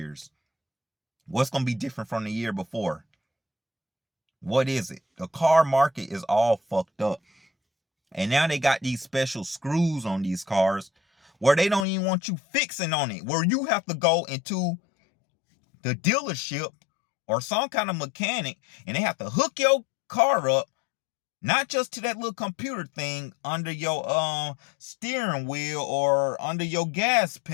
What's gonna be different from the year before? What is it? The car market is all fucked up. And now they got these special screws on these cars where they don't even want you fixing on it, where you have to go into the dealership or some kind of mechanic and they have to hook your car up, not just to that little computer thing under your steering wheel or under your gas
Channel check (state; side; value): drops out; right; at 11.9 s